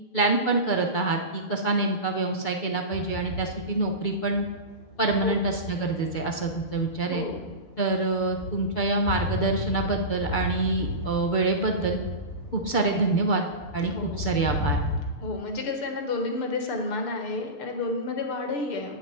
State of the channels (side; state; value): right; late; 6.8 ms